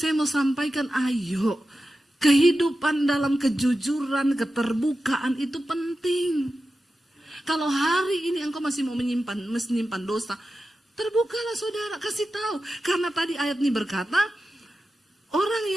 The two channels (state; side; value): normal; both; correlation 0.92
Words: mau sampaikan, ayo, kehidupan dalam kejujuran, keterbukaan itu penting. Kalau hari ini engkau masih mau menyimpan dosa, terbukalah saudara, kasih tahu. Karena tadi ayat ini berkata, orang